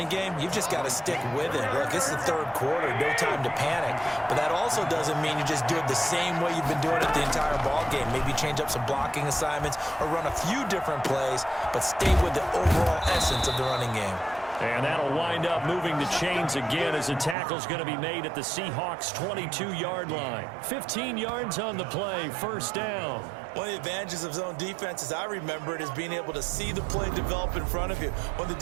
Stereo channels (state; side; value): drops out; left; at 17.4 s